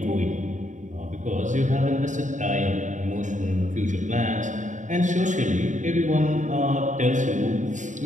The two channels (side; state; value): left; late; 0.36 ms